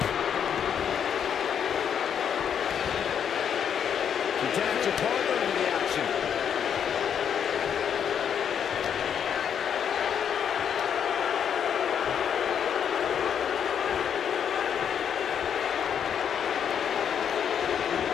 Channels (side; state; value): right; quieter; 8.2 dB